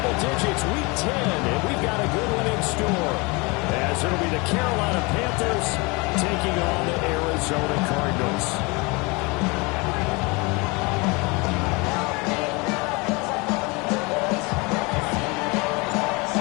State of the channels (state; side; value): quieter; right; 27.0 dB